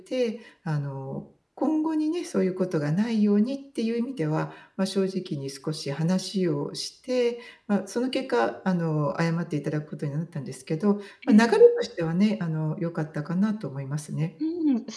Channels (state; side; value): identical; both; correlation 1.00